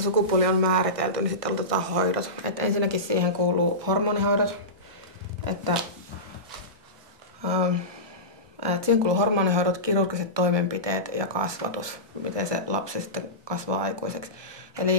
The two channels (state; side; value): late; left; 1.2 ms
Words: sukupuoli on määritelty, niin sitten aloitetaan hoidot. Et ensinnäkin siihen kuuluu hormonihoidot. Siihen kuuluu hormonihoidot, kirurgiset toimenpiteet ja kasvatus, miten se lapsi sitten kasvaa aikuiseksi.